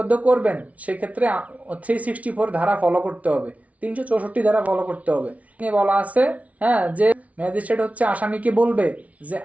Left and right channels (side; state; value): left; late; 0.067 ms